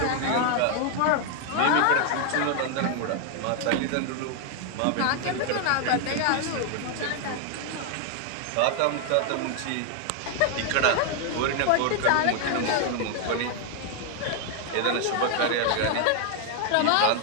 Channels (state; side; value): different; both; correlation 0.00